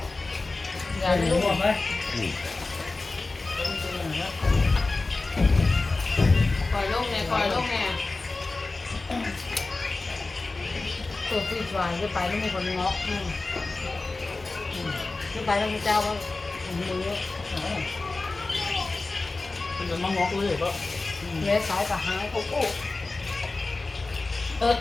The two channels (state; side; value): quieter; right; 3.4 dB